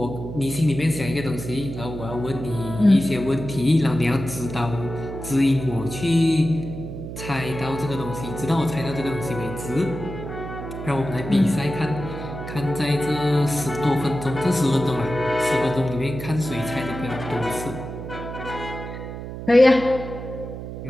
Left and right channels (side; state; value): right; noise; hum, 9 dB below the sound